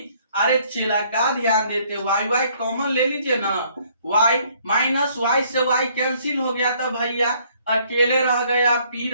अरे चेला का ध्यान देते, वाई वाई कॉमन ले लीजिए ना, वाई माइनस वाई से वाई कैंसिल हो गया तो भैया अकेले रह गया, पी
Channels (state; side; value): inverted; both; correlation -0.63